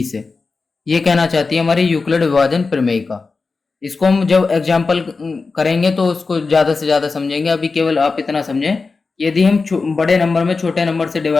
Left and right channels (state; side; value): quieter; right; 4.2 dB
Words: से। ये कहना चाहती है हमारी यूक्लिड विभाजन प्रमेयिका। इसको हम जब एग्जाम्पल करेंगे तो उसको ज़्यादा से ज़्यादा समझेंगे। अभी केवल आप इतना समझें, यदि हम बड़े नंबर में छोटे नंबर से